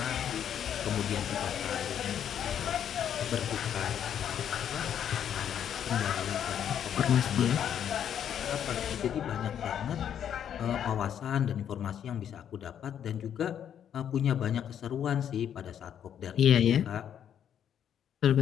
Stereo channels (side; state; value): right; quieter; 9.3 dB